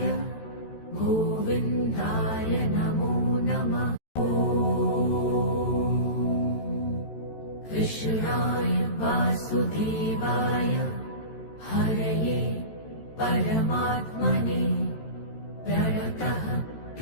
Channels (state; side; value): late; right; 13 ms